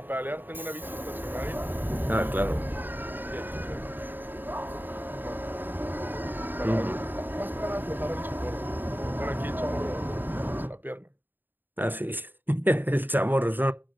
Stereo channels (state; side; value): late; left; 0.092 ms